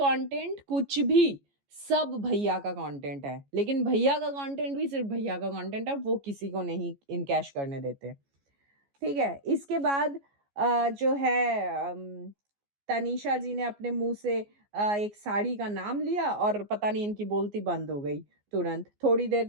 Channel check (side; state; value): left; late; 14 ms